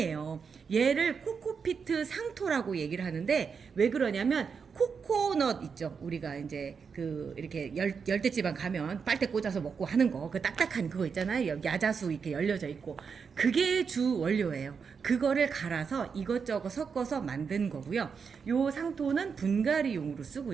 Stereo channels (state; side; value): quieter; left; 5.9 dB